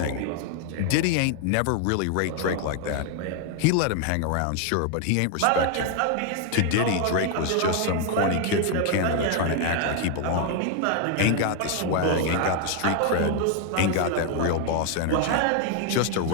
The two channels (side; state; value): both; different; correlation 0.00